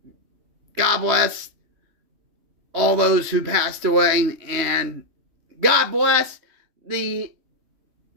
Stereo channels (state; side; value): late; left; 3.2 ms